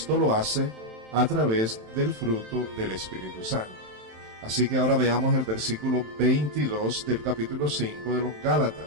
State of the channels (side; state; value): left; late; 27 ms